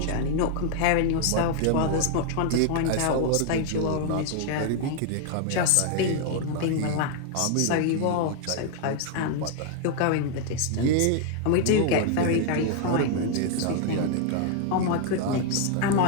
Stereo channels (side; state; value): both; different; correlation 0.00